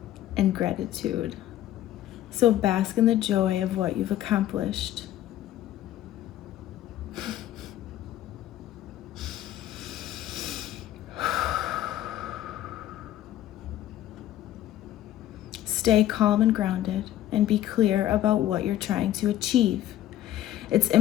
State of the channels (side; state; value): right; quieter; 12.8 dB